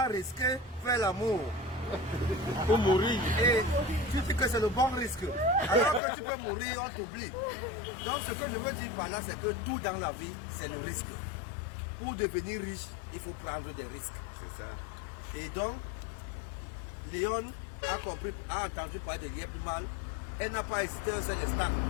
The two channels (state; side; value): drops out; right; at 6.0 s